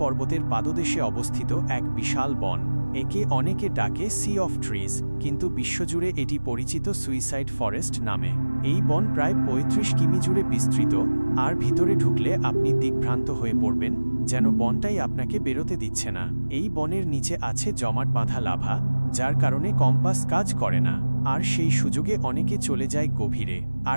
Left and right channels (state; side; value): inverted; both; correlation -1.00